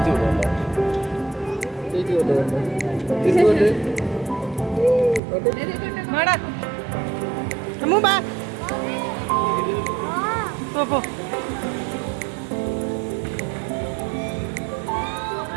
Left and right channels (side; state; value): left; drops out; at 5.2 s